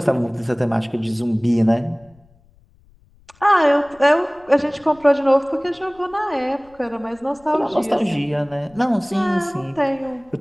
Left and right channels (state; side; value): noise; left; rumble, 30 dB below the sound